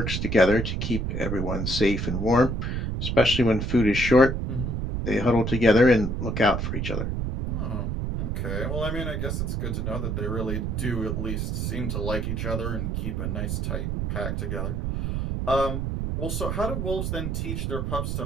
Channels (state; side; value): noise; right; rumble, 1 dB below the sound